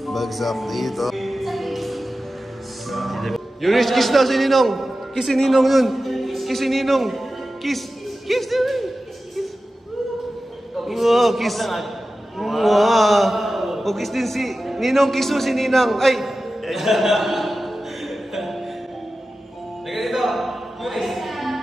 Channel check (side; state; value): both; normal; correlation 0.94